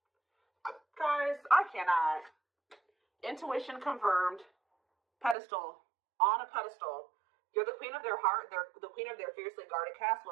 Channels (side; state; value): left; drops out; at 5.4 s